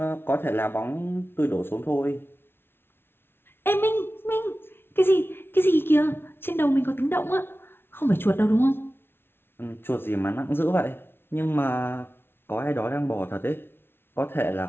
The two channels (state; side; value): late; right; 0.11 ms